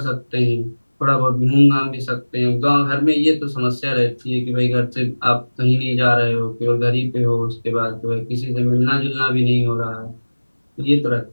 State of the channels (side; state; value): both; inverted; correlation -1.00